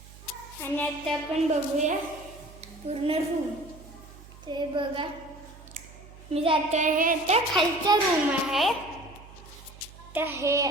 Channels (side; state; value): right; noise; hum, 19 dB below the sound